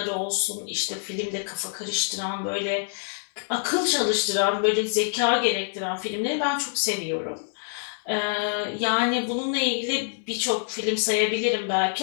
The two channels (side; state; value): right; silent; digital silence